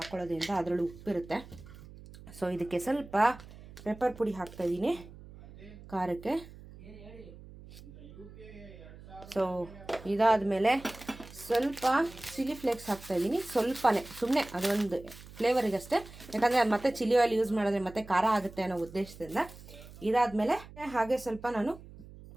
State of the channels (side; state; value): right; noise; hum, 18 dB below the sound